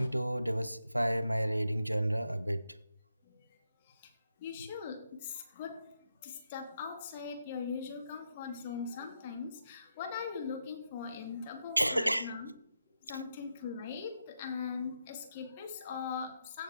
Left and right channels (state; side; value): inverted; both; correlation -0.84